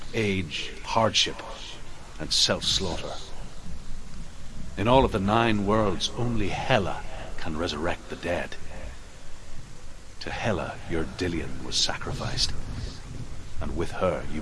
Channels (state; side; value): identical; both; correlation 1.00